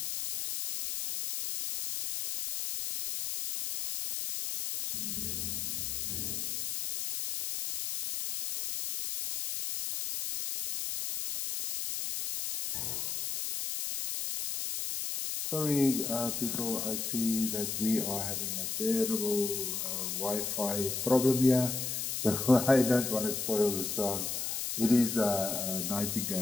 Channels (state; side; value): noise; left; hiss, 3 dB below the sound